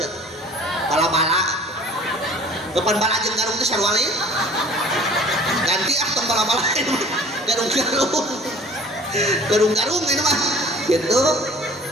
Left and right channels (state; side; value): normal; both; correlation 0.48